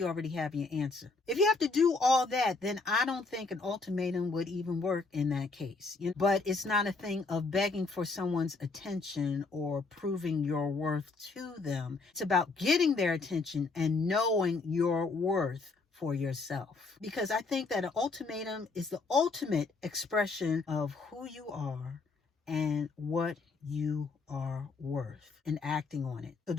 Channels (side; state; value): right; quieter; 3.9 dB